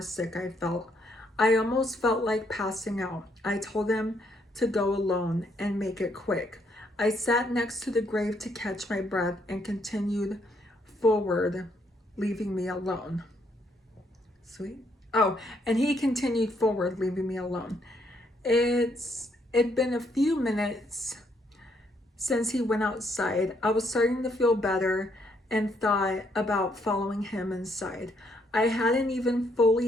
sick I felt. I almost felt like passing out. I told him to go alone and make it quick. I sat next to the grave to catch my breath and continued forward, leaving me alone. Sweet. Oh, and he continued forward, leaving me alone. It'd been a few minutes since he went outside. I was starting to feel better and thought about following him inside. I hadn't even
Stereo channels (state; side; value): normal; both; correlation 0.72